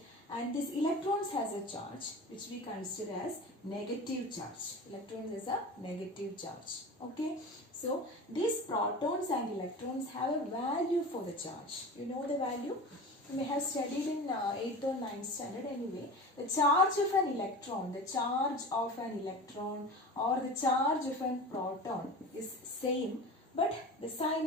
And this electrons has a charge which we consider as negative charge. Electrons has a negative charge. Okay. So these protons and electrons have a value for the charge. You know the value? You may have studied in 8th or 9th standard anyway. The charge of an electron, the charge of an electron or the charge of a proton is same, but the sign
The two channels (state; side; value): normal; both; correlation 0.33